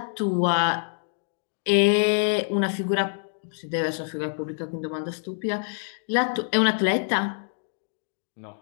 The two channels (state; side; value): silent; right; 61 dB below the other